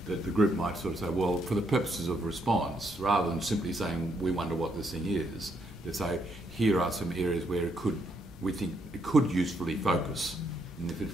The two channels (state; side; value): normal; both; correlation 0.75